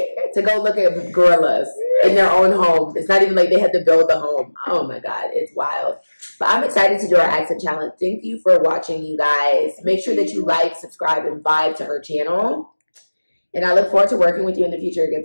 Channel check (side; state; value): both; inverted; correlation -1.00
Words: To go look at gorillas in their own home. It's not even like they had to build the home. Oh my God, it's wild. But I'm excited to do our accent challenge. Thank you for watching, you guys. Make sure that you like, subscribe, and vibe to her channel. And I look forward to working with you in the future, good